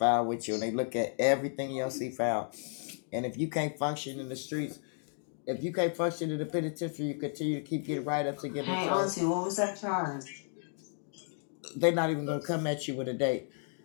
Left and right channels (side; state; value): right; silent; 56 dB below the other